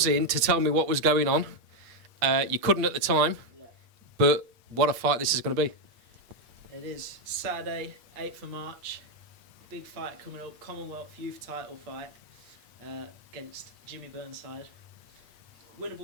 to tell me what was going on. You couldn't at the time, but what a fight this is going to be. It is Saturday, 8th of March. Big fight coming up, Commonwealth Youth Title fight against Jimmy Burnside.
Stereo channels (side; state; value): left; late; 8.3 ms